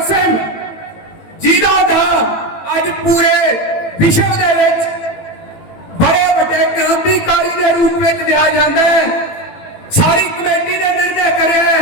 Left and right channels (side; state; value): right; late; 18 ms